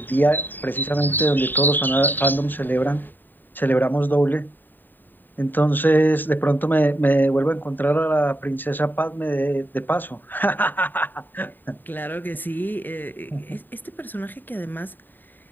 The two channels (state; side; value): late; right; 0.091 ms